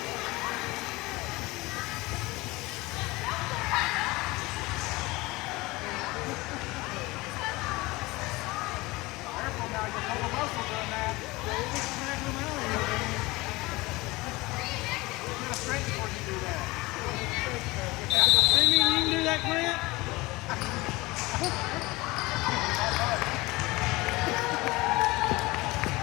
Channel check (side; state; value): right; quieter; 21.8 dB